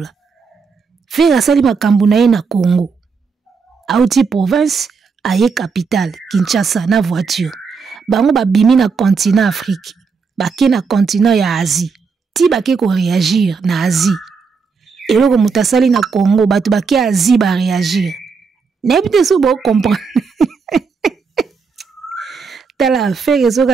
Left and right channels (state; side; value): quieter; left; 5.3 dB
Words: Faire asali makambo na ye na Congo. Auti province aye capitale Kinshasa na voiture. Bango ba bimi na continent Afrique. Bake na continent ya Asie. Ti bake ko réagir na Asie. Eloko mutasali na Congo batu bake Asie ba réagir. N'importe so bo comprendre. Tala affaire